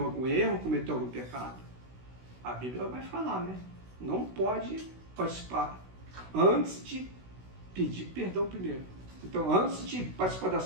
algum erro, cometeu algum pecado? A Bíblia vai falar, né? Não pode participar antes de pedir perdão primeiro. Então, antes de participar da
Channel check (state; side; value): late; left; 16 ms